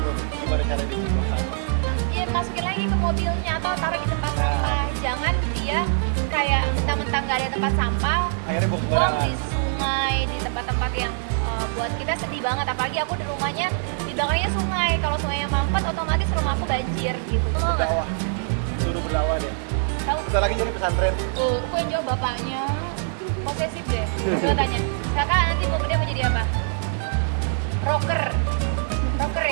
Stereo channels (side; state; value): left; silent; digital silence